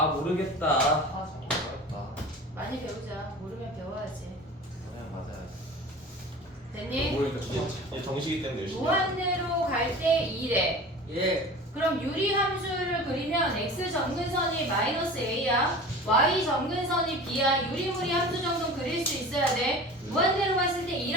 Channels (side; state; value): both; normal; correlation 0.37